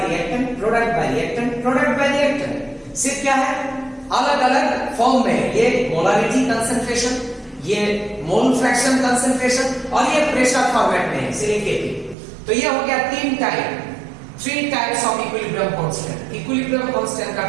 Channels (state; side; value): drops out; left; at 12.2 s